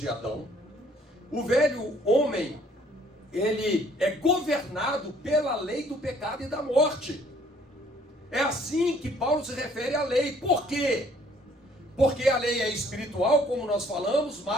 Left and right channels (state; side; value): normal; both; correlation 0.60